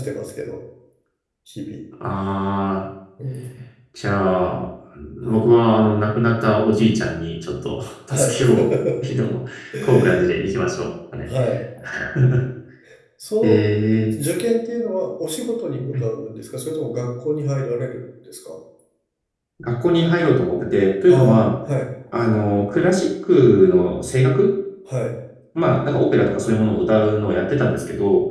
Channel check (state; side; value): identical; both; correlation 1.00